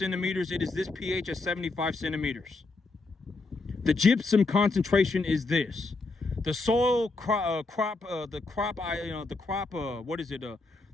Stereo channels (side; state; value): right; quieter; 3.5 dB